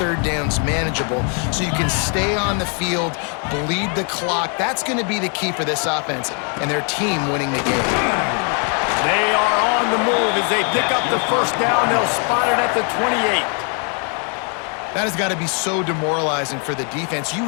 downs manageable so you can stay on the field, bleed the clock. That's going to be the key for this offense and their team winning the game. They are on the move as they pick up the 1st down. They'll spot it at the 28. That has got to be so demoralizing for the defense. You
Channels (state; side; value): quieter; right; 39.2 dB